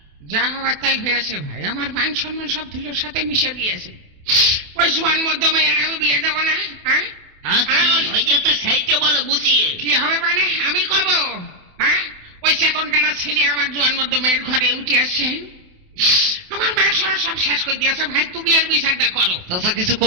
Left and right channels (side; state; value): left; late; 28 ms